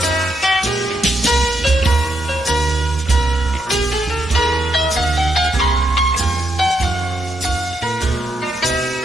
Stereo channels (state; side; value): normal; both; correlation 0.79